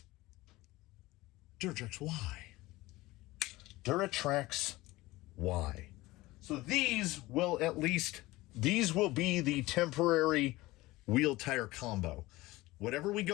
Duratrax, why? Duratrax, why? So these will be the temporary wheel tire combo. Whatever we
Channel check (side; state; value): right; quieter; 19.4 dB